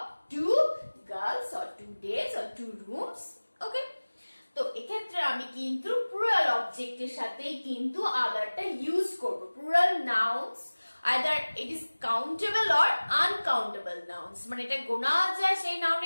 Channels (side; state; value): both; inverted; correlation -1.00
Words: 2 girls or 2 days or 2 rooms. Okay, তো এক্ষেত্রে আমি কিন্তু প্লুরাল অবজেক্টের সাথেই কিন্তু আদারটা ইউজ করব। Plural nouns either it is countable or uncountable nouns, মানে এটা গোনা যায় সেই